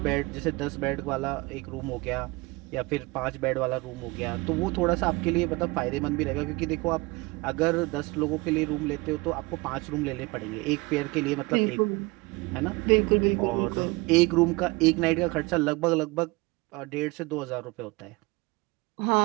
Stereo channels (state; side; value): quieter; left; 24.5 dB